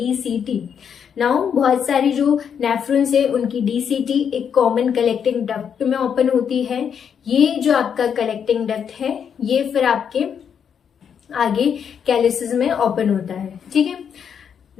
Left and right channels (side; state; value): right; quieter; 7.6 dB